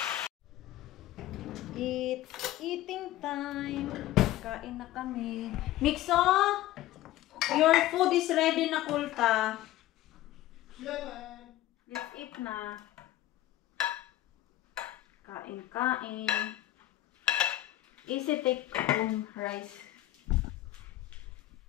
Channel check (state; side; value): quieter; right; 14.8 dB